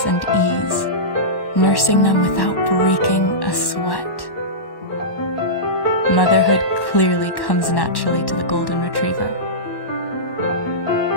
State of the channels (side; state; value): right; late; 1.1 ms